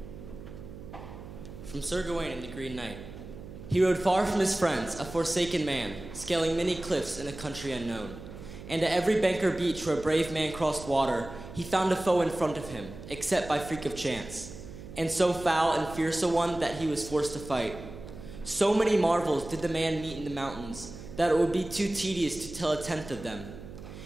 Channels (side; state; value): right; noise; hum, 13 dB below the sound